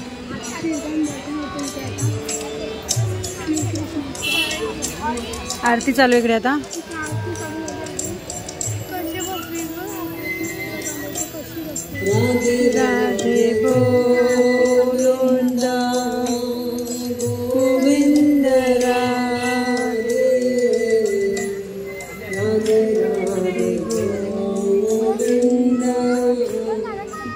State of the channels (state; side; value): identical; both; correlation 1.00